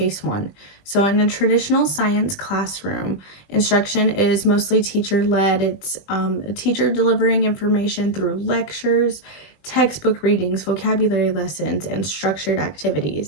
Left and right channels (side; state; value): right; late; 20 ms